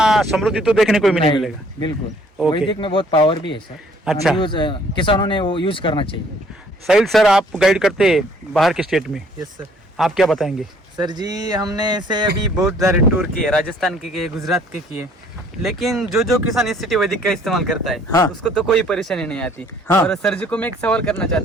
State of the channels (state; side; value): normal; both; correlation 0.59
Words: समृद्धि तो देखने को ही नहीं नहीं, मिलेगा। बिल्कुल। ओके। वैदिक में बहुत पावर भी है सर। अच्छा। किसानों ने वो यूज करना चाहिए। साहिल सर, आप गाइड करते हैं बाहर के स्टेट में, यस सर। आप क्या बताएंगे? सर जी, हमने ऐसे अभी बहुत सारे टूर किए, राजस्थान के किए, गुजरात के किए, लेकिन जो किसान इस सिटी वैदिक का इस्तेमाल करता है हाँ। उसको तो कोई परेशानी नहीं आती। हाँ। और सर जी को मैं एक सवाल करना